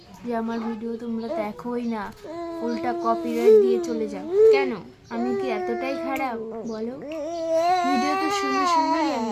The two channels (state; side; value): identical; both; correlation 1.00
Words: যে আমার ভিডিও তোমরা দেখোই না, উল্টা কপিরাইট দিয়ে চলে যাও? কেন? আমি কি এতটাই খারাপ বলো? ভিডিও তো সুন্দর সুন্দরই